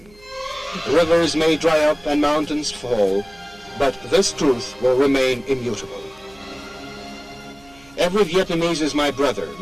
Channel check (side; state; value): right; noise; hum, 27 dB below the sound